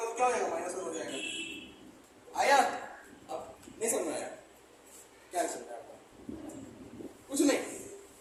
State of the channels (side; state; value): both; identical; correlation 1.00